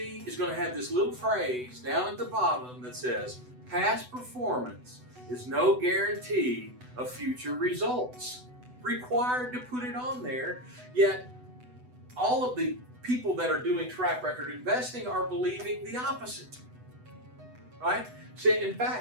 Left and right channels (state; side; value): late; left; 8.0 ms